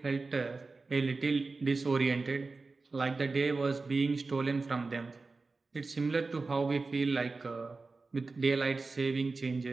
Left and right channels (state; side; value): quieter; left; 3.9 dB